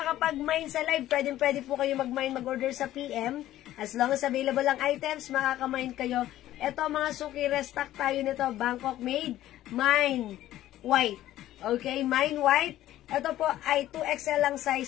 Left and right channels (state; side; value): quieter; right; 13.8 dB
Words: sa live, pwede po kayo mag-mine, mag-order sa PM. As long as available ang items, makaka-mine kayo. Ito, mga suki, restock tayo nito. Bangkok made, mine white. Okay? Mine white. Ito po ay 2XL lang